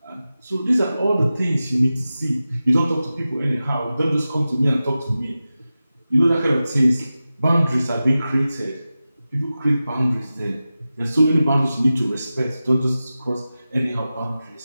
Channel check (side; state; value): both; inverted; correlation -0.94